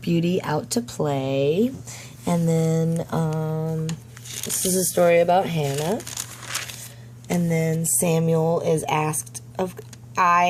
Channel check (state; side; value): identical; both; correlation 1.00